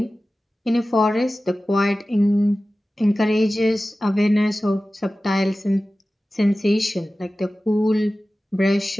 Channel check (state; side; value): normal; both; correlation 0.96